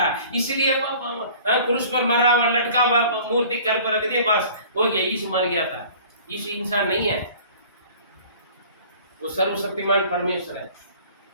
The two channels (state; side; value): inverted; both; correlation -0.48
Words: इसलिए क्रूस पर मरा हुआ लटका हुआ मूर्ति घर पर रख दिया, बस हो गया, यीशु मर गया था। यीशु इंसान नहीं है, वो सर्वशक्तिमान परमेश्वर है,